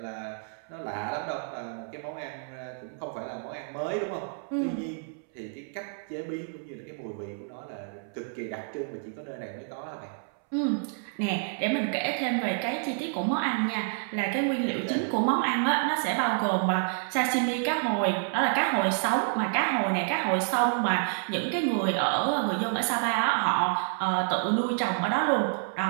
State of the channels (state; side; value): silent; left; 59 dB below the other